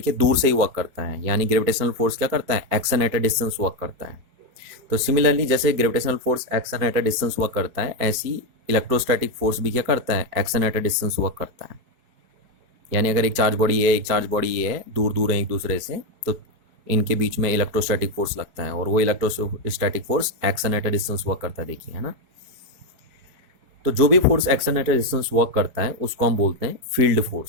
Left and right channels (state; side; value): late; left; 4.5 ms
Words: दूर से ही वर्क करता है, यानी ग्रेविटेशनल फोर्स क्या करता है, action at a distance work करता है। तो सिमिलरली जैसे gravitational force action at a distance work करता है, ऐसी इलेक्ट्रोस्टैटिक फोर्स भी क्या करता है, action at a distance work करता है। यानी अगर एक चार्ज बॉडी है, एक चार्ज बॉडी ये है, दूर दूर है एक दूसरे से, तो इनके बीच में इलेक्ट्रोस्टैटिक फोर्स लगता है और वो electrostatic force action at a distance work करता है, देखिए है ना। तो जो भी force action at a distance work करता है उसको हम बोलते हैं फील्ड